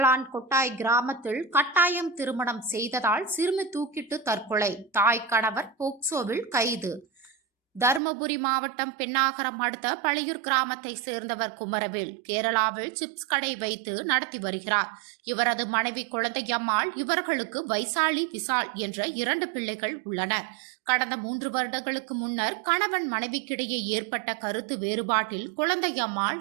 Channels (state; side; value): drops out; left; at 8.0 s